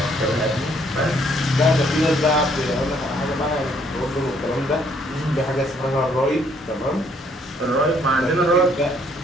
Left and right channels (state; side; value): normal; both; correlation 0.66